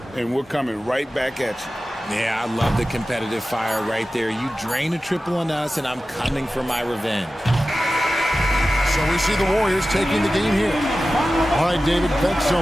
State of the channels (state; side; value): normal; both; correlation 0.95